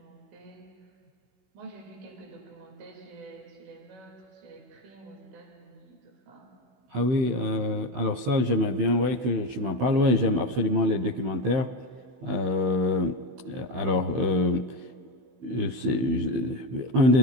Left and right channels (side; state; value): left; late; 16 ms